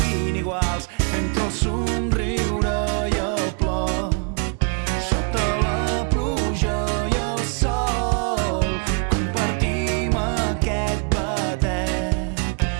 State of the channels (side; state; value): left; quieter; 37.0 dB